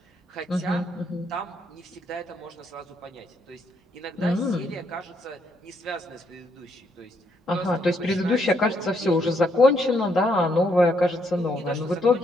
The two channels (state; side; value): normal; both; correlation 0.74